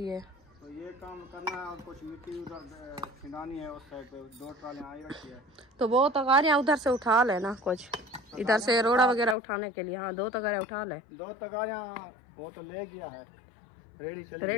है। तो ये काम करना है और कुछ मिट्टी उधर छिंदानी है उस साइड पे, 2 ट्रालियां आई रखी है। तो वो तगारियाँ उधर से उठा लेना, कुछ इधर से रोड़ा वगैरह उठाने के लिए। हाँ 2 तगारे उठा ले। 2 तगारियां वो तो ले गया है,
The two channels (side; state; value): right; drops out; at 9.3 s